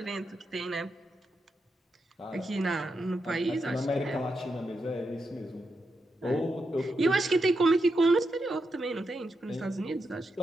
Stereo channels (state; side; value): normal; both; correlation 0.85